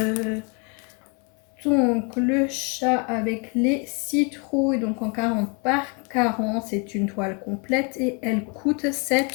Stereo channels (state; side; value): quieter; right; 34.5 dB